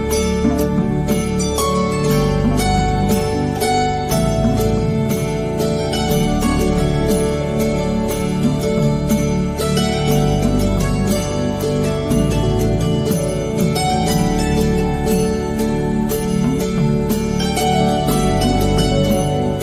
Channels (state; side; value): identical; both; correlation 1.00